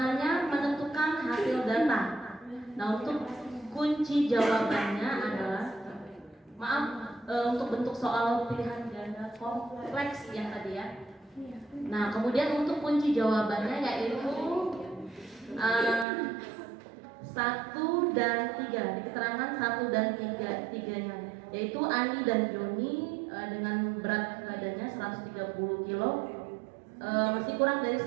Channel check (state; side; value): drops out; left; at 16.1 s